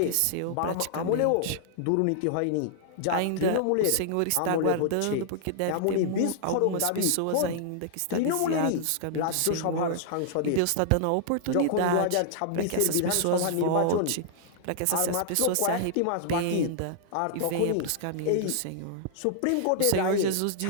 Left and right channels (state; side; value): different; both; correlation -0.01